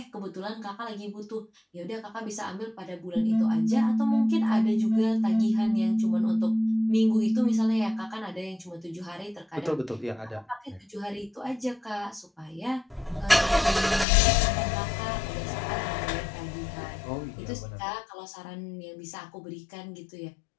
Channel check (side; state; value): right; drops out; at 14.1 s